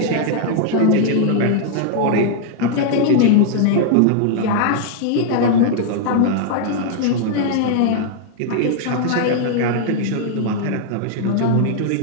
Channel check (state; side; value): different; both; correlation -0.01